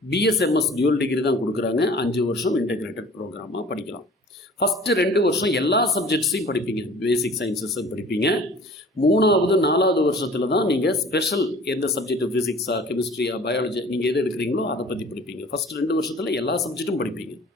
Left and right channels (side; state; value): both; normal; correlation 0.47